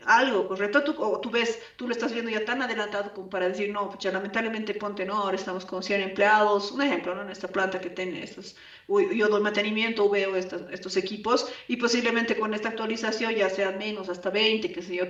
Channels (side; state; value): both; identical; correlation 1.00